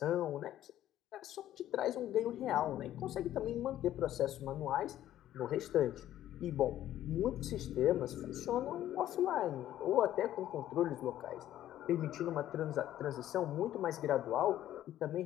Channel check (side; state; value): right; quieter; 12.6 dB